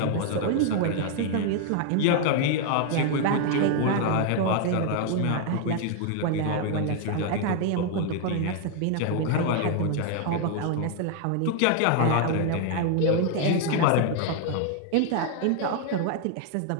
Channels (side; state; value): both; different; correlation 0.00